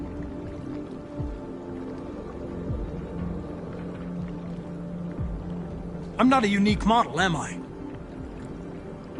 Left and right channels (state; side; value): identical; both; correlation 1.00